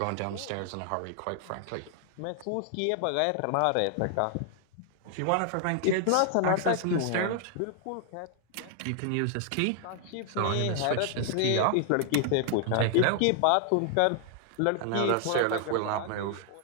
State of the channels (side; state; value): both; different; correlation 0.00